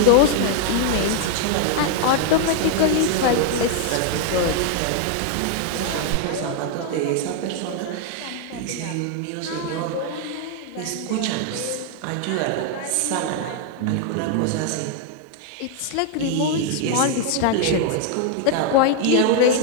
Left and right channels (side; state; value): both; different; correlation 0.00